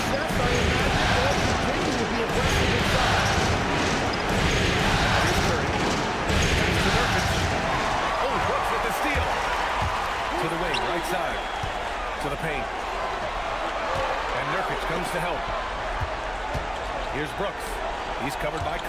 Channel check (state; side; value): identical; both; correlation 1.00